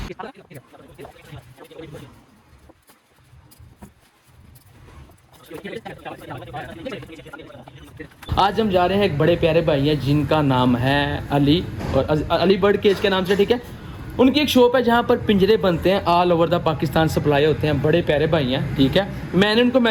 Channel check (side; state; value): both; identical; correlation 1.00